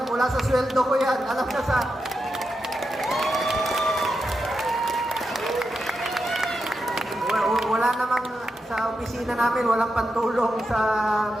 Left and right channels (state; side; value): normal; both; correlation 0.87